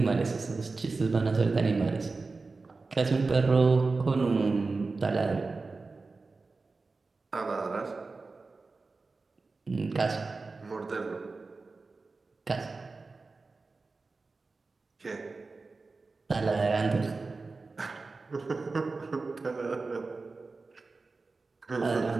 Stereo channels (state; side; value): quieter; left; 3.9 dB